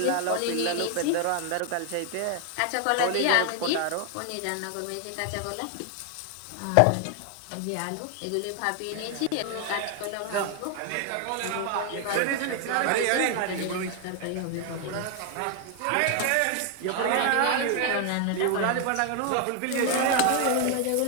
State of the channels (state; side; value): different; both; correlation 0.00